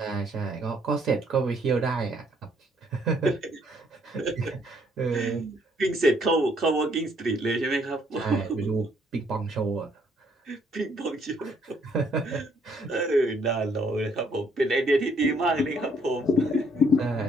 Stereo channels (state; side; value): normal; both; correlation 0.67